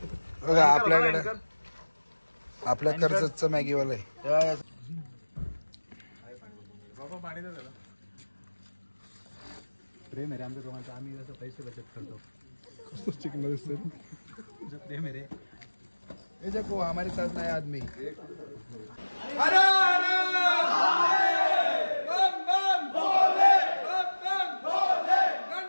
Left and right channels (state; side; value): inverted; both; correlation -1.00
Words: बघा आपल्याकडे आपल्या कर्जतचं मॅगीवाला आहे. प्रेम आहे रे आमच्या दोघांचं. आम्ही जसं पैसे बचत करतो कसं चिकन दिसतं. प्रेम आहे रे. ये देखो हमारे साथ नया आदमी. बम बम भोले बम बम